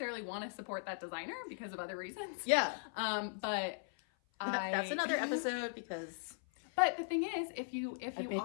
want to support that designer because of other reasons. Yeah. But that's another episode because... But the thing is, if you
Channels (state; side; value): silent; right; 52 dB below the other